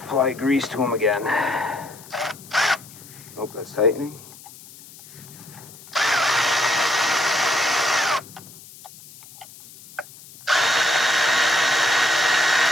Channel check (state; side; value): noise; left; hiss, 20 dB below the sound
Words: grease to them again. Hope that's tightening.